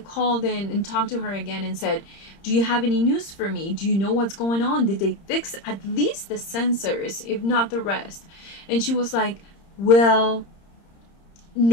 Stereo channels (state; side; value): late; right; 30 ms